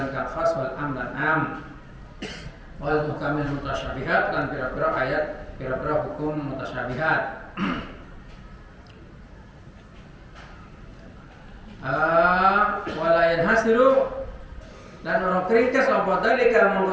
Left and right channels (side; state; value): both; identical; correlation 1.00